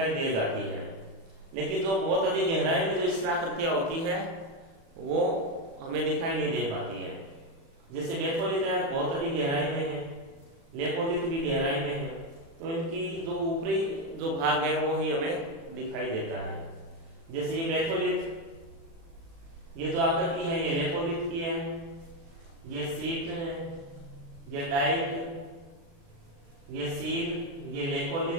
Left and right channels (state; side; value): late; left; 36 ms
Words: दे जाती है, लेकिन जो बहुत अधिक गहराई में जो स्थलाकृतियां होती है वो हमें दिखाई नहीं दे पाती है। जैसे बेथोलिथ है बहुत अधिक गहराई में है, लेपोलिथ भी गहराई में है, तो इनकी जो ऊपरी जो भाग है वो ही हमें दिखाई देता है। जैसे ये बेथोलिथ, ये जो आकृति है ये लेपोलिथ की है, ये सीट है, ये डाइट, ये सील, ये